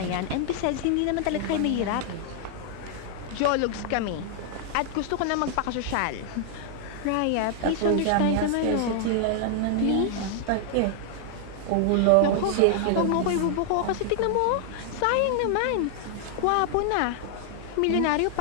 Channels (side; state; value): both; different; correlation -0.01